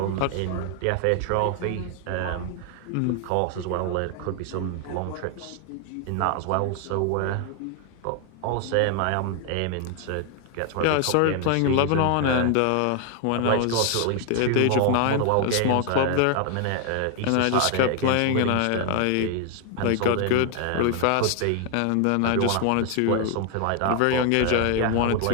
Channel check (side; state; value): both; different; correlation 0.00